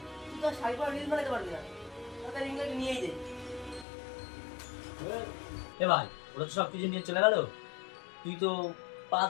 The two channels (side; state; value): right; drops out; at 3.9 s